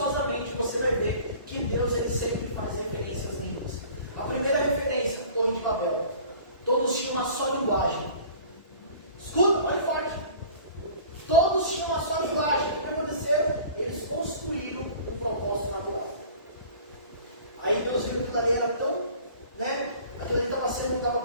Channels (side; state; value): both; inverted; correlation -0.45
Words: você vai ver que Deus ele sempre faz referência às línguas. A primeira referência, Torre de Babel. Todos tinham uma só linguagem. Escuta, olha forte. Todos tinham uma só linguagem. O que aconteceu? Eles construíram um propósito natural. Aí Deus viu que aquilo ali era tão, aquilo ali estava